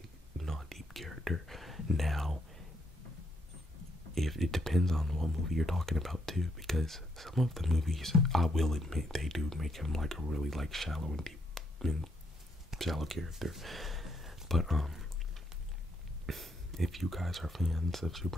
not deep character. Now, if it depends on what movie you're talking about too, because some of the movies, I will admit, they do make him like a really like shallow and deep and shallow character. But if you guys are fans of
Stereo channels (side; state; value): both; normal; correlation 0.75